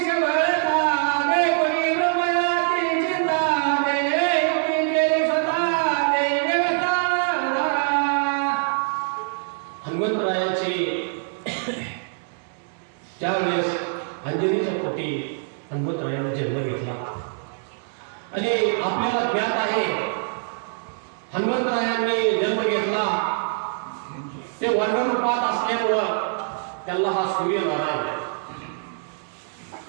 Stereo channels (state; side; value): silent; left; digital silence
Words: सबळता देवनी ब्रह्मयाची चिंता देवी केली स्वतः देवता. हनुमंतरायाची ज्यावेळेस अंजनीच्या पोटी हनुमंतरायाने जन्म घेतला आणि आपल्याला ज्ञात आहे हनुमंतरायांनी जन्म घेतला ते वर्णरूपात असल्यामुळं त्याला हा सूर्यनारायण